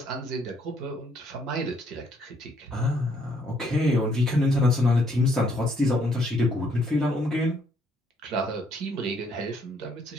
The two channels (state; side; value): normal; both; correlation 0.68